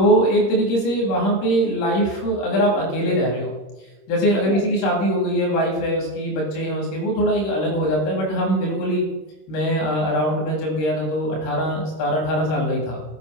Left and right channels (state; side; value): late; right; 26 ms